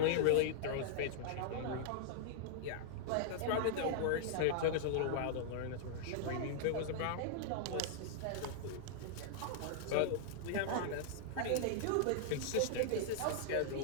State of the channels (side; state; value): both; different; correlation -0.01